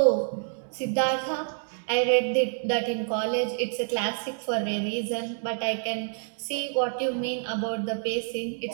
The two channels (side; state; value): left; silent; 60 dB below the other